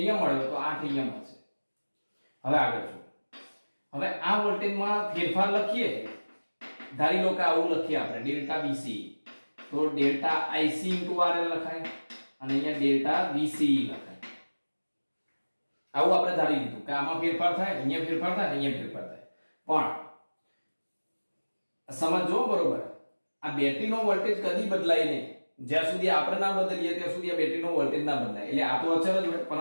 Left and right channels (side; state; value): both; inverted; correlation -1.00